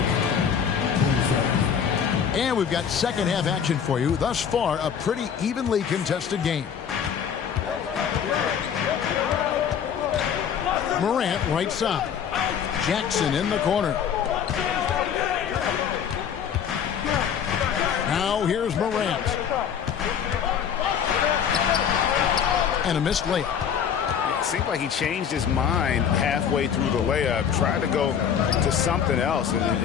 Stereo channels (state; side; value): quieter; right; 7.9 dB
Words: And we've got second half action for you. Thus far, a pretty evenly contested game. Morant right side. Jackson in the corner. Now here's Morant. and a missed layup. It seemed like he changed his mind halfway through the layup, tried to go to something else,